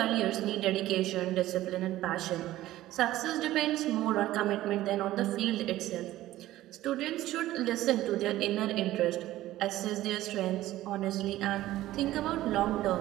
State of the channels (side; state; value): left; quieter; 15.2 dB